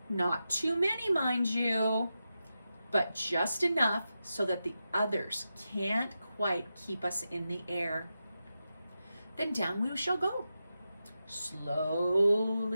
Not too many, mind you, but just enough so that the others can't quite keep us in the air. Then down we shall go,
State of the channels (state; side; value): inverted; both; correlation -0.90